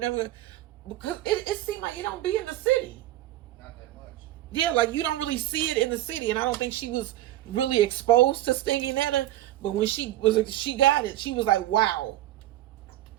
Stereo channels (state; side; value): quieter; left; 14.7 dB